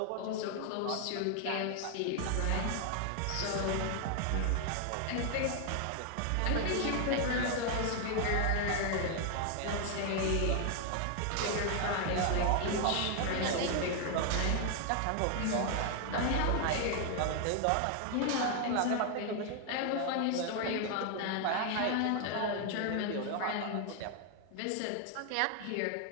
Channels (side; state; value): both; different; correlation 0.00